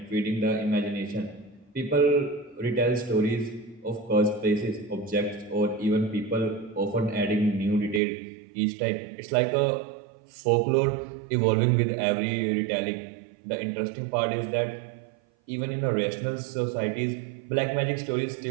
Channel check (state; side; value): drops out; left; at 8.0 s